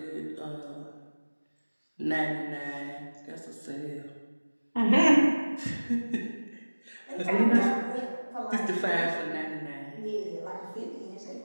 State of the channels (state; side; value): inverted; both; correlation -1.00